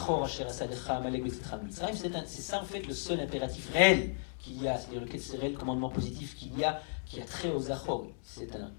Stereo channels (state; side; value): silent; right; 55 dB below the other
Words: Asher Asalecha, Amalek, Betsetra, Mitzrayim, c'est ça en fait le seul impératif réel qu'il y a, c'est-à-dire le réel commandement positif qu'il y a, qui a trait au Zachor. C'est un